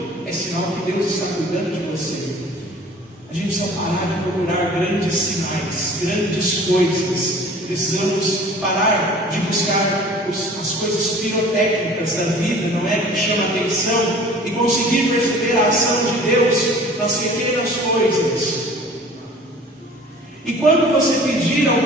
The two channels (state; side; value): normal; both; correlation 0.46